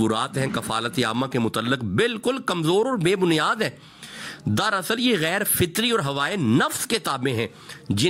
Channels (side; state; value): both; identical; correlation 1.00